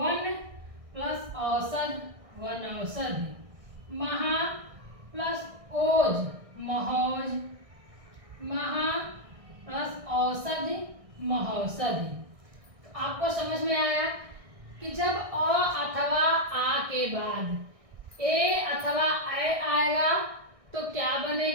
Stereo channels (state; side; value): late; left; 1.6 ms